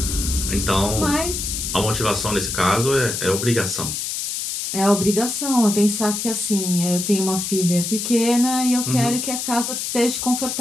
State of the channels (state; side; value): noise; left; hiss, 3 dB below the sound